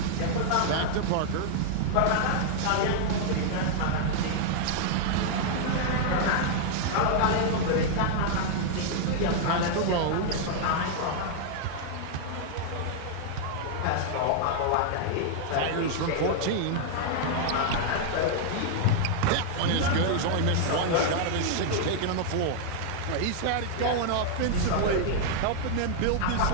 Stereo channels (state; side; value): different; both; correlation -0.01